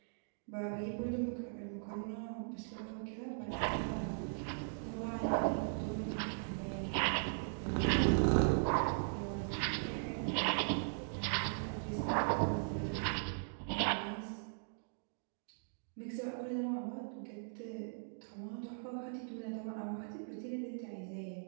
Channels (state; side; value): silent; left; digital silence